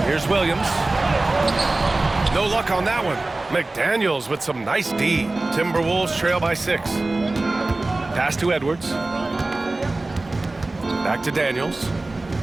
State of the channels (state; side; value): quieter; left; 3.0 dB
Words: Here's Williams. No luck on that one. McDaniels with some nice D. Timberwolves trail by 6. Pass to Edwards. Back to Daniels.